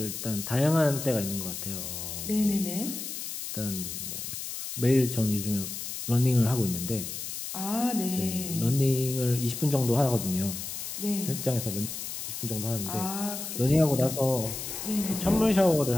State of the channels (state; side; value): noise; left; hiss, 6 dB below the sound